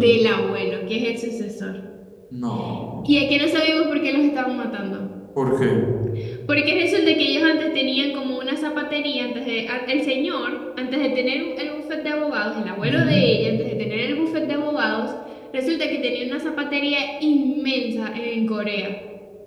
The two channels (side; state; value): both; identical; correlation 1.00